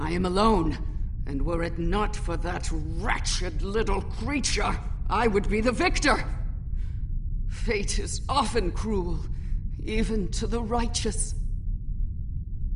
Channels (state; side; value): identical; both; correlation 1.00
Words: am alone, and were it not for that wretched little creature, I would be the victor. Fate is often cruel, even to the righteous.